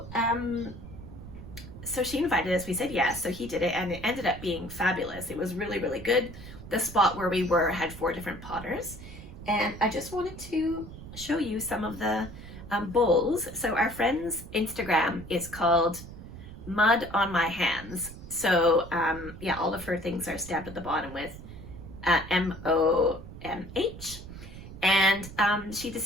so she invited us, we said yes, so he did it, and it ended up being fabulous. It was really, really good. The spot where we were had 4 different potters, and I just wanted to show you some of the bowls. So our friend's Instagram is called Mud on My Hands. So yeah, all of her things are stamped at the bottom with MOMH. And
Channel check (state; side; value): noise; right; rumble, 13 dB below the sound